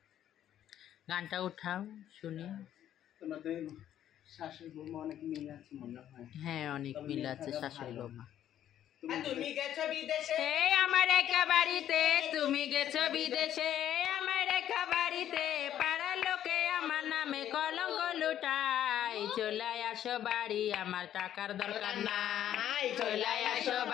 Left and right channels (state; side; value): quieter; right; 11.0 dB